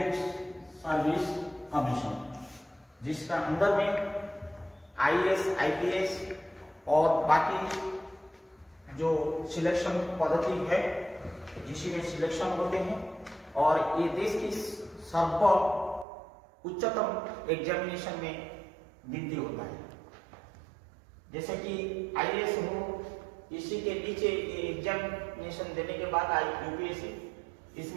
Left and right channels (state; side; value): drops out; left; at 16.1 s